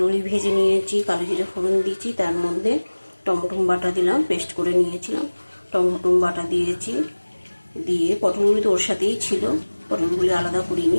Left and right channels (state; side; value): inverted; both; correlation -1.00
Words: ভেজে নিয়েছি, কালো জিরে ফোড়ন দিয়েছি, তার মধ্যে টমেটো বাটা দিলাম, পেস্ট করে নিয়েছিলাম, টমেটো বাটা দিয়েছি, দিয়ে পটলগুলি তো ওর সাথেই ছিল, পটলগুলি আলাদা